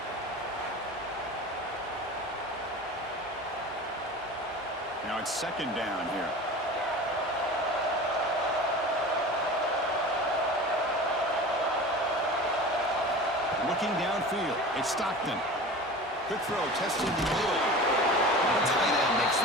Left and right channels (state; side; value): normal; both; correlation 0.35